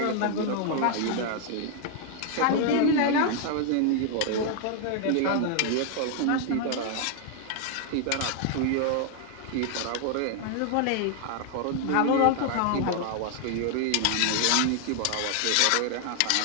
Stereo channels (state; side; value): different; both; correlation 0.00